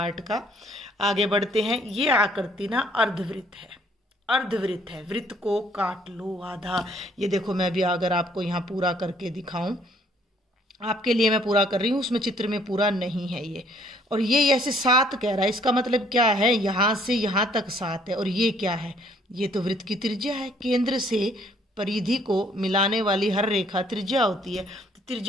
का। आगे बढ़ते हैं। ये आकृति ना अर्धवृत्त है, अर्धवृत्त है, वृत्त को काट लो आधा। ये देखो मैं भी अगर आपको यहाँ पूरा करके दिखाऊं, आपके लिए मैं पूरा कर रही हूँ, उसमें चित्र में पूरा नहीं है ये। और ये ऐसे 7 कह रहा है, इसका मतलब क्या है, यहाँ से यहाँ तक 7 है। और ये क्या है, ये तो वृत्त की त्रिज्या है। केंद्र से परिधि को मिलाने वाली हर रेखा त्रिज्या होती है, तो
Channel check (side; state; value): both; normal; correlation 0.63